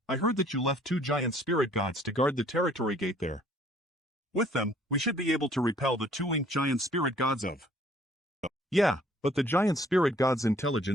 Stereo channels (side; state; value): both; normal; correlation 0.59